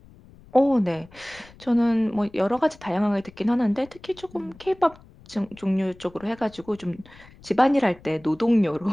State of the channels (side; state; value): left; noise; rumble, 24 dB below the sound